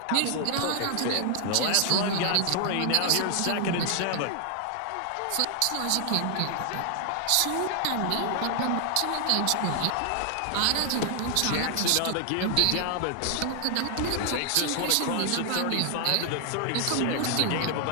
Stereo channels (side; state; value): both; different; correlation 0.00